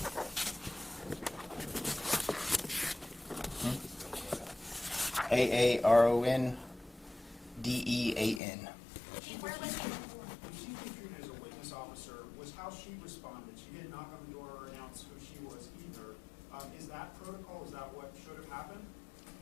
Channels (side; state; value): right; drops out; at 8.4 s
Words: AARONDEAN. Chief, where was he before? She's being treated as a witness officer. Was how she responded. She didn't knock on the door or announce who she was either. Is that protocol? Is that what should have happened?